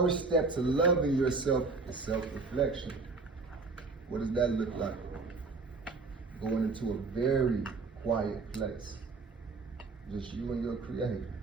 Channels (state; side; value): quieter; left; 4.1 dB